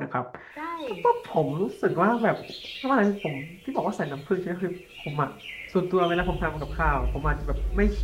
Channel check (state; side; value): identical; both; correlation 1.00